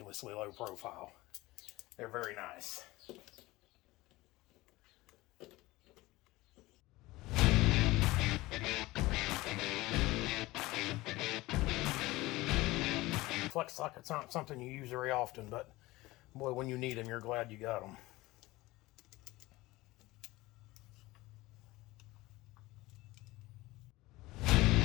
low profile. They're very nice. Flex sockets aren't something you use very often, but boy, when you need them, you're glad you got them.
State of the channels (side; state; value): right; quieter; 19.6 dB